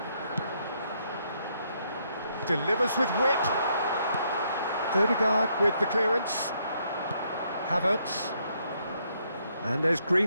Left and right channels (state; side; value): inverted; both; correlation -0.73